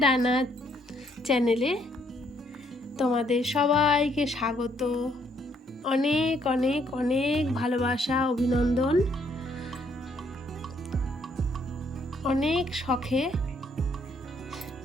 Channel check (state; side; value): normal; both; correlation 0.69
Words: ডানা চ্যানেলে তোমাদের সবাইকে স্বাগত। অনেক অনেক অনেক ভালোবাসা, অভিনন্দন। অনেক শখে